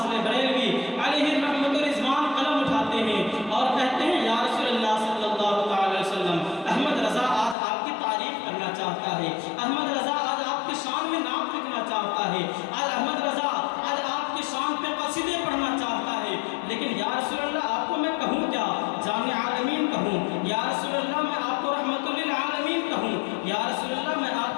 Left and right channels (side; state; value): right; drops out; at 7.6 s